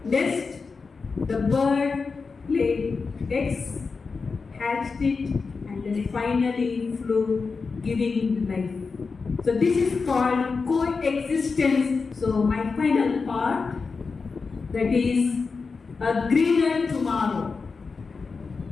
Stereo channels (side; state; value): right; quieter; 4.7 dB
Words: nest. The bird laid eggs, hatched it, and then finally flew, giving life. So this is called coexistence. So my final part, that is a greener tomorrow.